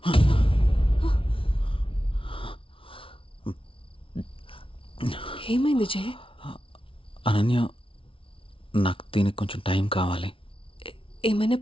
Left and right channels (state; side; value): late; right; 0.25 ms